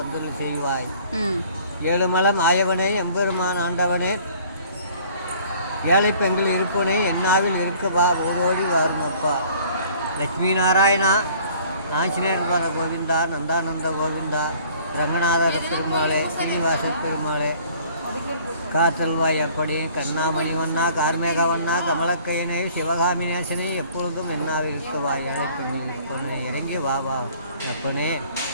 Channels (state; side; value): inverted; both; correlation -0.54